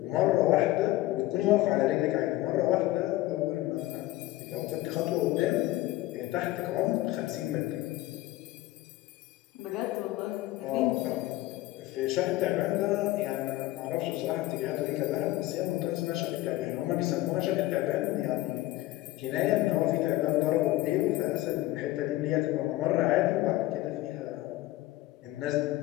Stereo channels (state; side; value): quieter; right; 17.1 dB